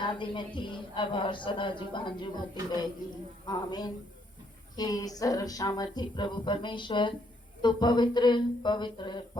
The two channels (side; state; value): both; normal; correlation 0.71